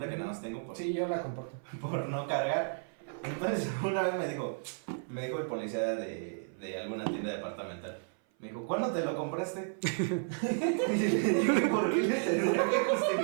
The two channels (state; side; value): silent; left; 56 dB below the other